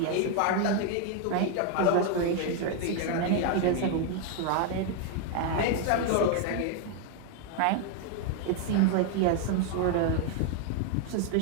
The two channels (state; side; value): different; both; correlation 0.00